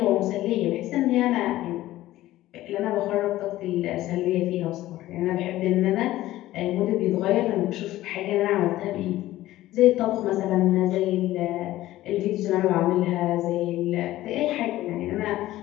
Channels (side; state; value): right; quieter; 15.5 dB